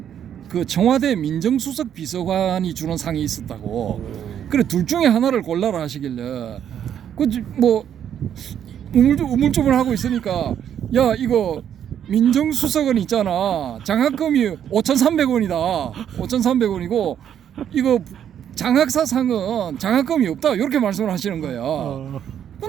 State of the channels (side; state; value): left; quieter; 9.4 dB